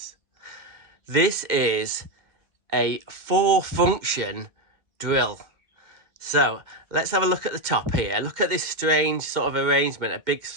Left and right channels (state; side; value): late; left; 2.1 ms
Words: This is a 4-function drill. So let's have a look at the top here. Look at this strange sort of arrangement, a big